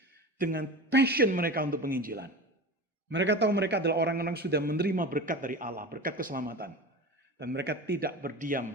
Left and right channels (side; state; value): both; normal; correlation 0.30